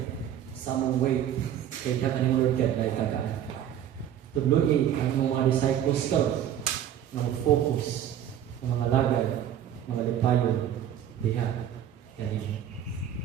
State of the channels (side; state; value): left; quieter; 10.3 dB